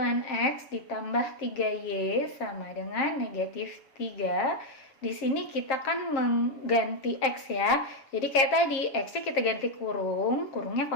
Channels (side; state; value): right; late; 7.1 ms